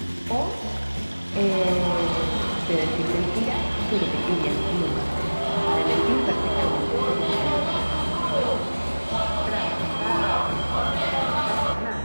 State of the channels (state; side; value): inverted; both; correlation -1.00